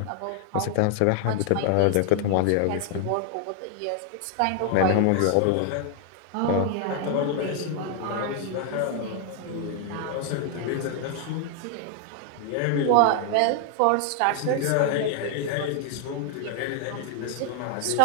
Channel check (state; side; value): different; both; correlation 0.00